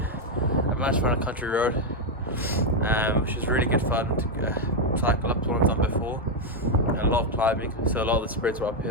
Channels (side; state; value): both; normal; correlation 0.02